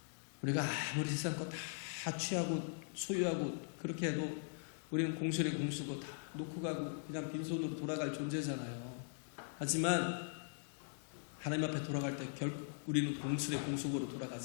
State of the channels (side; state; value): right; silent; digital silence